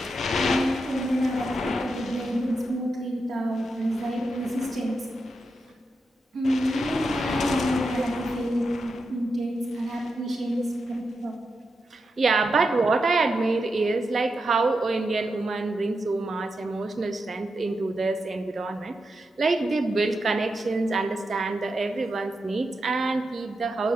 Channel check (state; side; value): normal; both; correlation 0.87